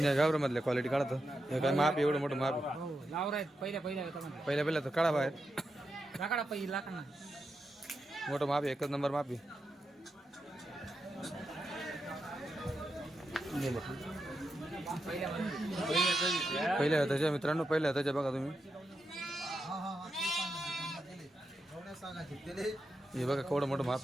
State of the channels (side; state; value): both; normal; correlation 0.86